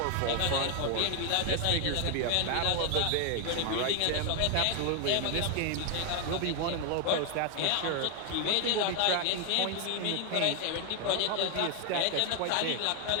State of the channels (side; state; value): both; different; correlation 0.00